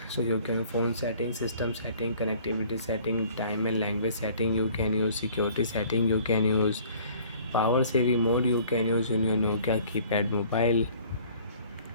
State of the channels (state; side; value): inverted; both; correlation -0.53